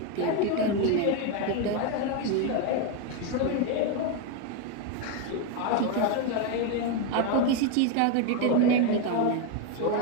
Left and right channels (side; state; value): both; different; correlation 0.02